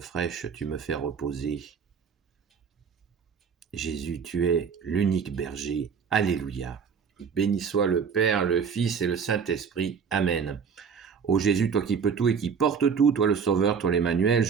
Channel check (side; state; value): left; quieter; 6.4 dB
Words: tu me fais reposer. Jésus, tu es l'unique berger. Alléluia. Béni soit le Père, le Fils et le Saint-Esprit. Amen. Ô Jésus, toi qui peux tout et qui portes tout, toi le Sauveur, toi l'Emmanuel,